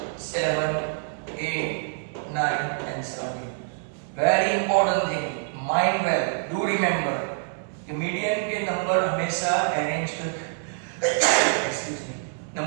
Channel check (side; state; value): left; silent; digital silence